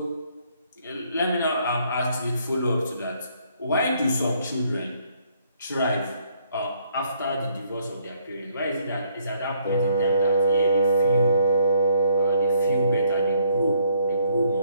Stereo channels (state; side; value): inverted; both; correlation -0.67